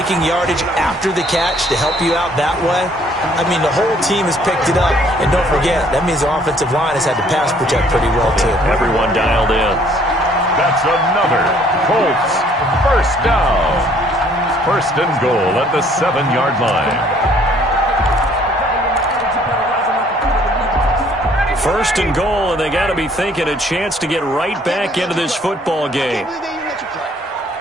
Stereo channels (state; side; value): normal; both; correlation 0.61